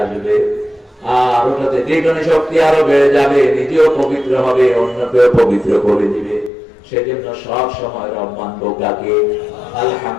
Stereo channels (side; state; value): right; drops out; at 6.5 s